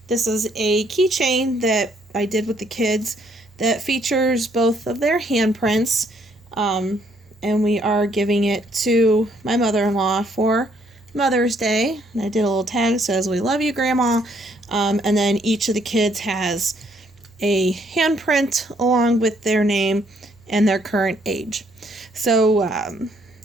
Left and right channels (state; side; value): normal; both; correlation 0.68